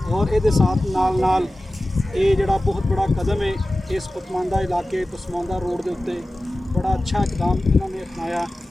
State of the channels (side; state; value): both; normal; correlation 0.96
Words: اور یہ ساتھ نال نال یہ جڑا بہت بڑا قدم ہے اس پسماندہ علاقے پسماندہ روڈ دے اتنے بڑا اچھا اقدام انہوں نے اپنایا.